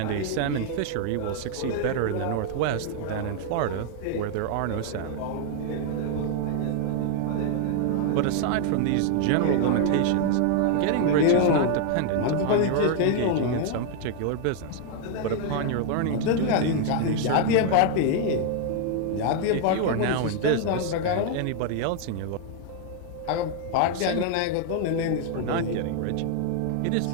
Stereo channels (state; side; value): different; both; correlation 0.00